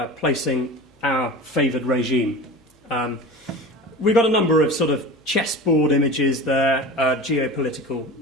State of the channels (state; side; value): normal; both; correlation 0.33